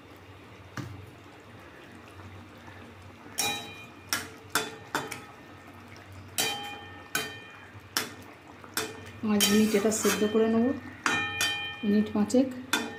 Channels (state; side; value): identical; both; correlation 1.00